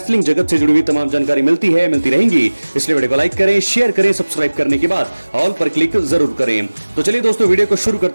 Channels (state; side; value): inverted; both; correlation -1.00